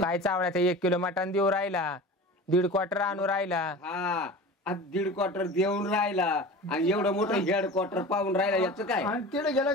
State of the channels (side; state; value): both; normal; correlation 0.35